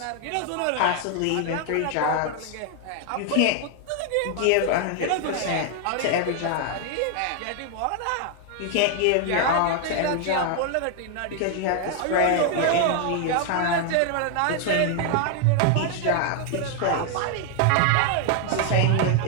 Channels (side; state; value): both; different; correlation 0.00